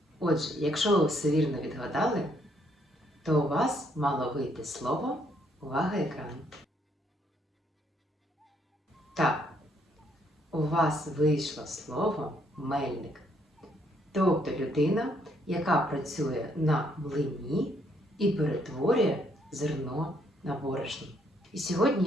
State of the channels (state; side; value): normal; both; correlation 0.70